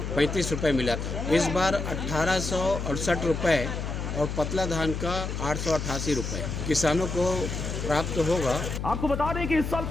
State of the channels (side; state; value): left; noise; hum, 4 dB below the sound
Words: रुपये मिला था। इस बार 1868 रुपये और पतला धान का 888 रुपये किसानों को प्राप्त होगा। आपको बता दें कि इस साल